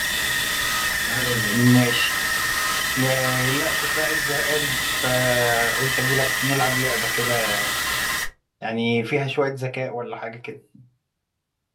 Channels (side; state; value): both; identical; correlation 1.00